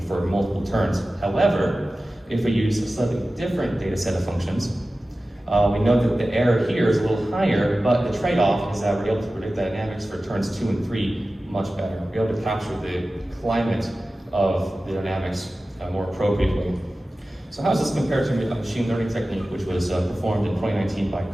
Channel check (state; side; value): normal; both; correlation 0.95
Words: for multiple turns. However, if we use a slightly different data set of functions, we know that the error here is a little higher, but the trade-off is that we're able to predict the dynamics for turns 2 and 3 much better. We're able to capture the climate of the dynamics more appropriately. So how does this compare to a machine learning technique which was performed in 2019 by